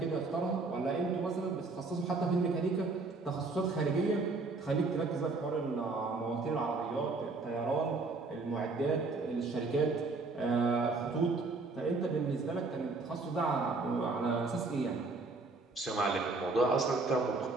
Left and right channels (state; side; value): quieter; left; 3.7 dB